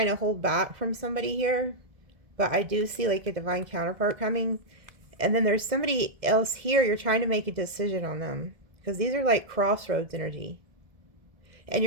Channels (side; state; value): left; late; 2.0 ms